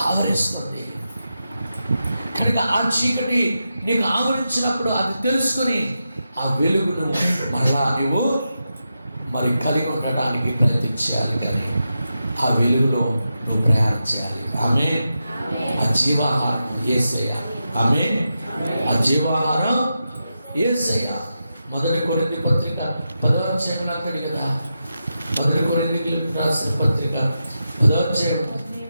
ఆవరిస్తుంది కనుక ఆ చీకటి నీకు ఆవరించినప్పుడు అది తెలుసుకొని ఆ వెలుగును మరలా నువ్వు మరి కలిగి ఉండడానికి ప్రయత్నించాలి. కానీ ఆ వెలుగులో నువ్వు ప్రయాణం చేయాలి. ఆమేన్. ఆ జీవాహారం యేసయ్య. ఆమేన్. ఆ జీవాహారం యేసయ్య. 1 కొరింథీ పత్రిక 10వ అధ్యాయంలో అంటాడు కదా, 1 కొరింథీయులకు రాసిన పత్రిక 10వ అధ్యాయం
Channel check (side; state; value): both; inverted; correlation -0.89